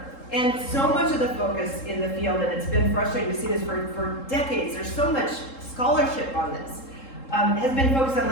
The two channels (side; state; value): right; late; 3.7 ms